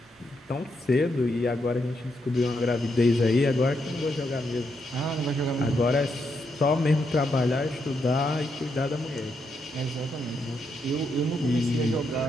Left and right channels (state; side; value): normal; both; correlation 0.80